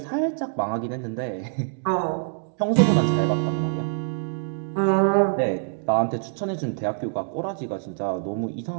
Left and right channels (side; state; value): left; silent; digital silence